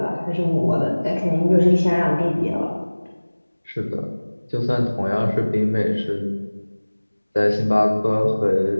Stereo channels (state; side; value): inverted; both; correlation -1.00